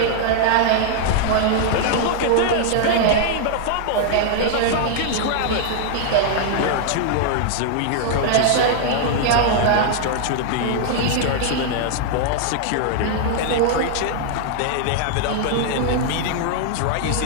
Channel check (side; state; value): both; different; correlation -0.01